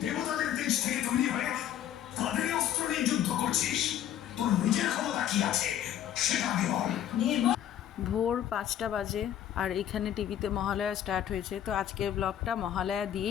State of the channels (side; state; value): right; quieter; 10.7 dB